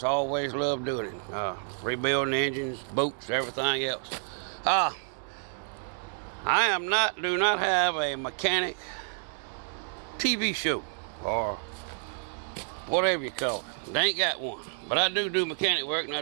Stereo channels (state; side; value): silent; left; digital silence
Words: always loved doing it. Rebuilding engines, boots, everything else. I do not have a mechanic TV show or whatever you call it. They ain't got one. But I do mechanic work, and I